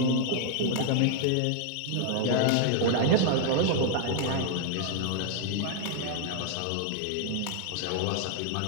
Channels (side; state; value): both; different; correlation 0.00